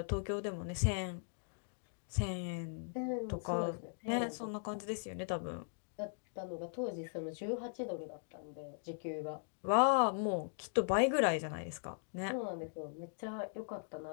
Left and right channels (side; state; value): right; silent; digital silence